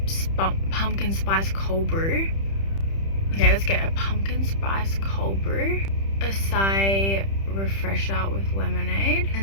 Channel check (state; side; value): late; right; 31 ms